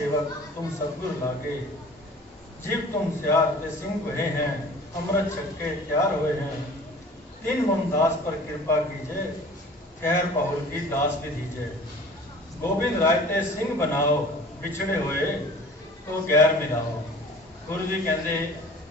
तुम सतगुर लागे, जीव तुम सियार के सिंह हुए हैं, अमृत छक्के तैयार हुए हैं, तीन मुमदास पर कृपा कीजिए, खैर पहुल की दास भी दीजिए, गोविंद राय ते सिंह बनाओ, बिछड़े हुए तो गैर मिलाओ। गुरु जी कहते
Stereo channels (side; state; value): both; normal; correlation 0.45